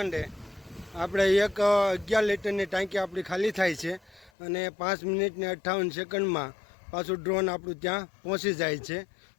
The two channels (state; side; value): drops out; right; at 4.3 s